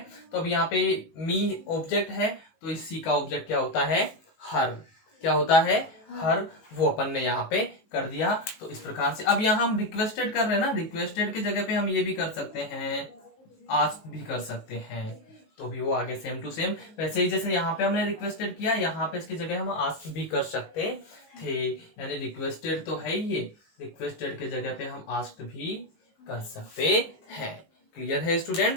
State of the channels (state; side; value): late; right; 19 ms